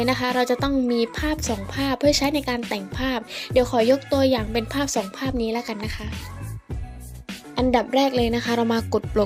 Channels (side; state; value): both; identical; correlation 1.00